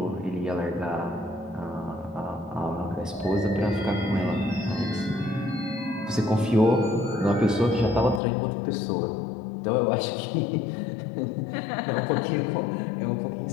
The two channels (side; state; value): right; drops out; at 8.2 s